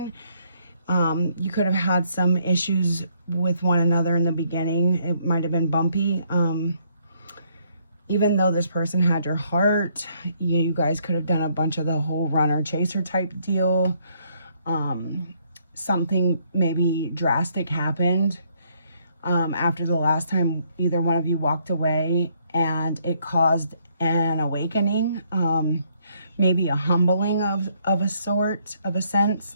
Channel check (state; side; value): inverted; both; correlation -0.69